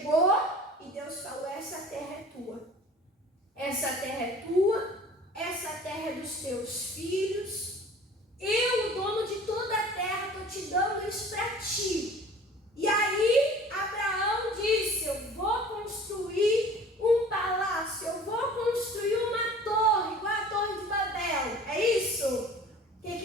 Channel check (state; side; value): normal; both; correlation 0.46